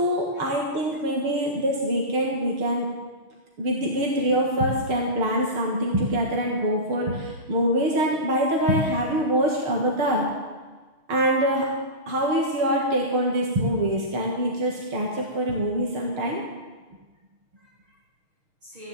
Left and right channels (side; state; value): left; late; 6.4 ms